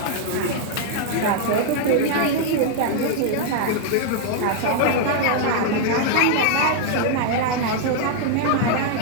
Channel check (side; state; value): both; different; correlation 0.00